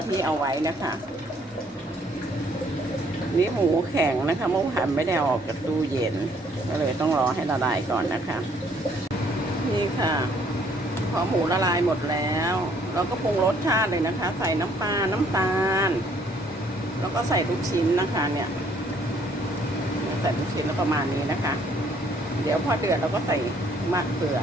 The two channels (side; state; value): both; normal; correlation 0.64